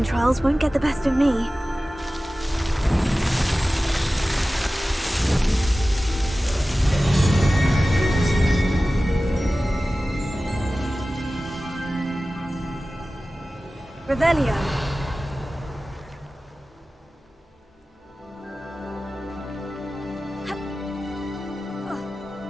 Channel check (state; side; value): normal; both; correlation 0.96